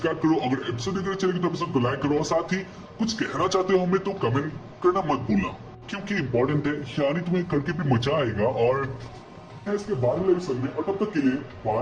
करो। अगर एपिसोड देख रहे चैनल तो एपिसोड को लाइक करो और साथ ही कुछ कहना चाहते हो हमें तो कमेंट करना मत भूलना, क्योंकि इंपॉर्टेंट है, यानी तुम्हें करके भी मजा आएगा। और इसके बाद वाले एपिसोड में और तब तक के लिए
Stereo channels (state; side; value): identical; both; correlation 1.00